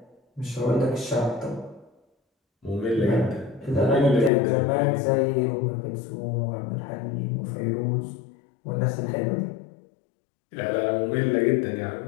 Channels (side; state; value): right; drops out; at 4.3 s